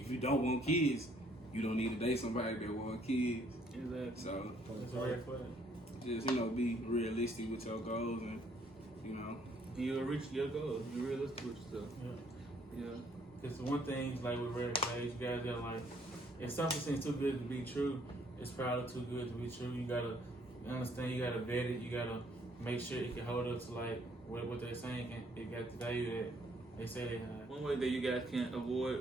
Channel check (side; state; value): both; normal; correlation 0.65